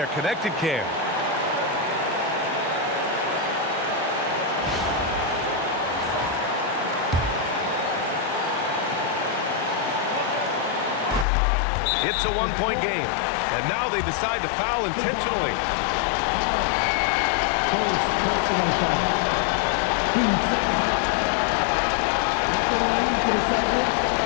connected cam. It's a one-point game, and now they decide to foul intentionally.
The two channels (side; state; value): right; drops out; at 11.2 s